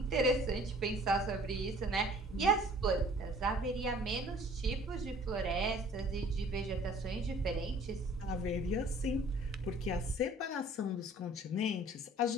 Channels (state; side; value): normal; both; correlation 0.52